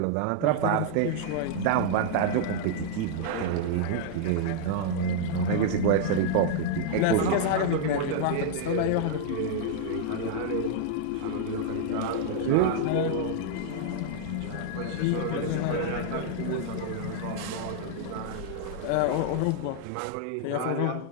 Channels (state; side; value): different; both; correlation -0.01